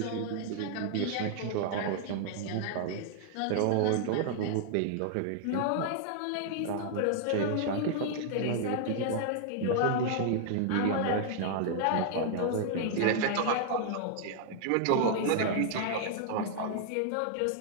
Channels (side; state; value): both; different; correlation -0.01